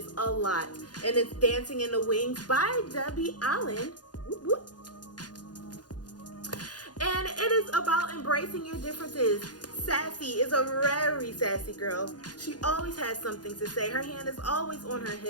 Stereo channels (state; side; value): late; right; 0.69 ms